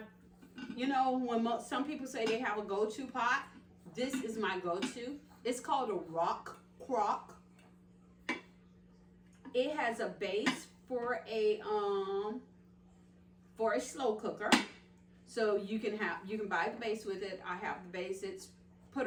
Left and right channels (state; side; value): identical; both; correlation 1.00